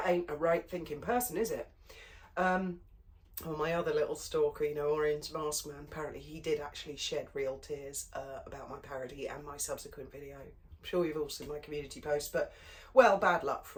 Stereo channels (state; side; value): identical; both; correlation 1.00